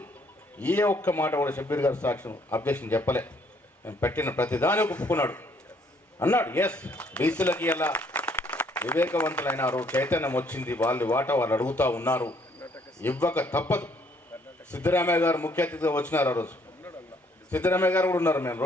ఏ ఒక్క మాట కూడా షబ్బీర్ గారు సాక్ష్యం అబ్జెక్షన్ చెప్పలే. నేను పెట్టిన ప్రతిదాని ఒప్పుకున్నాడు. అన్నాడు ఎస్ బీసీలకి ఎలా వివేకవంతులైనారు, చైతన్యం వచ్చింది, వాళ్ళు వాటా వాళ్ళు అడుగుతూ ఉన్నారు, ఇవ్వక తప్పదు. సిద్ధరామయ్య గారు ముఖ్య అతిథిగా వచ్చినారు. ఆ రోజు సిద్ధరామయ్య గారు కూడా ఉన్నారు మేము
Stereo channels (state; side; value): normal; both; correlation 0.66